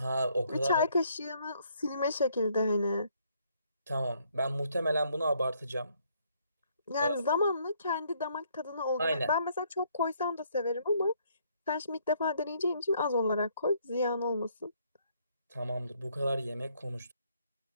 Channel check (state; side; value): inverted; both; correlation -0.68